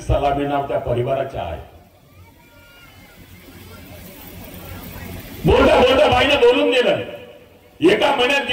सलामी नाव त्या परिवाराच्या आहे. बोलता बोलता बाईने बोलून दिलं. एका महिन्यात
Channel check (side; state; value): both; identical; correlation 1.00